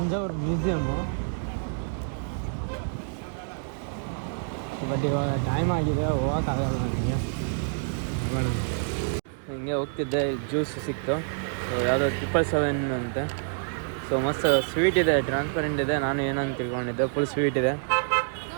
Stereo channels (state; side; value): silent; left; digital silence